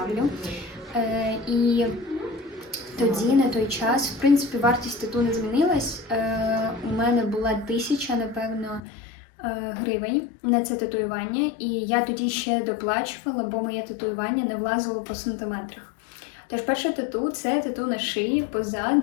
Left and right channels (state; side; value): drops out; right; at 8.8 s